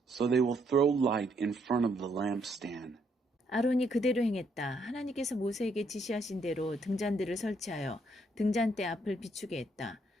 so they will throw light in front of the lampstand. 아론이 그대로 행했다. 하나님께서 모세에게 지시하신 대로 등잔들을 설치하여 등잔대 앞을 비추게 했다.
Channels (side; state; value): both; normal; correlation 0.72